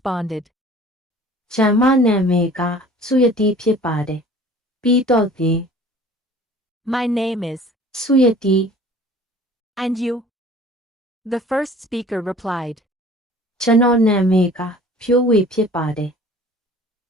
ကျမနာမည်ကဆုရတီဖြစ်ပါတယ်ပြီးတော့ဒီ "My name is," ဆုရတီ "And you?" The first speaker replied, ကျွန်တော်နာမည်ကဖြိုးဝေဖြစ်ပါတယ်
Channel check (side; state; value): both; normal; correlation 0.48